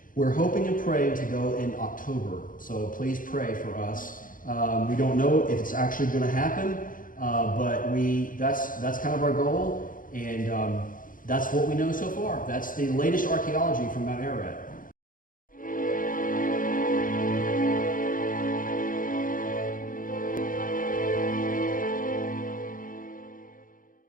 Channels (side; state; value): right; late; 0.40 ms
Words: We're hoping and praying to go in October, so please pray for us. We don't know if it's actually going to happen, but that's kind of our goal, and that's what we know so far. That's the latest archaeology from Mount Ararat.